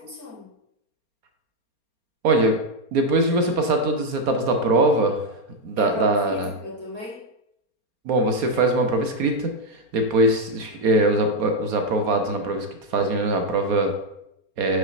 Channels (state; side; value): late; left; 4.3 ms